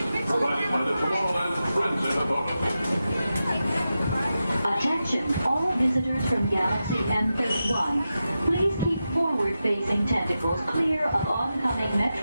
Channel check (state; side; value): inverted; both; correlation -0.91